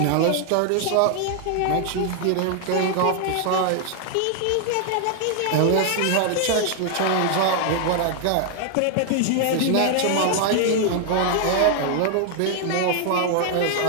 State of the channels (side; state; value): both; different; correlation 0.00